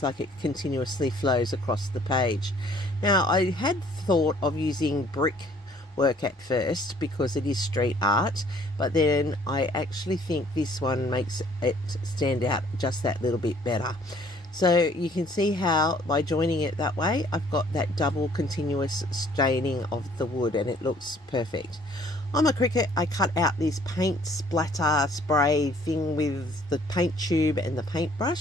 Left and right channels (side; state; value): both; normal; correlation 0.58